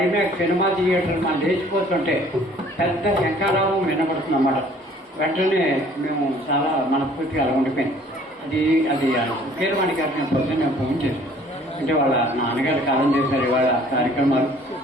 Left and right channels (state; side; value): normal; both; correlation 0.55